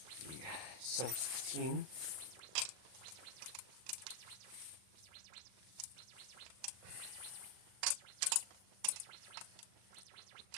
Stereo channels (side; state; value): left; late; 39 ms